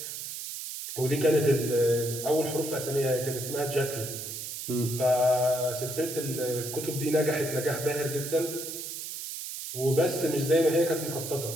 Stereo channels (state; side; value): noise; right; hiss, 7 dB below the sound